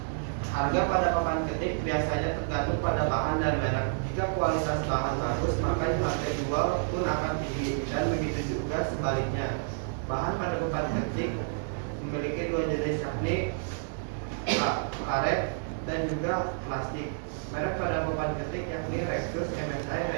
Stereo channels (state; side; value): silent; left; digital silence